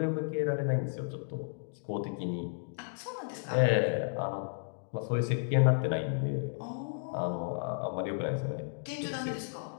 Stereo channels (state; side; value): silent; right; digital silence